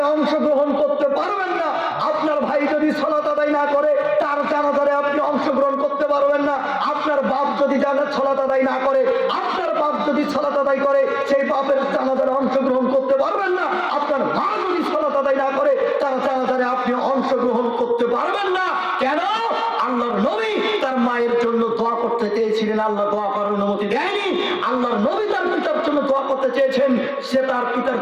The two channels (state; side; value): identical; both; correlation 1.00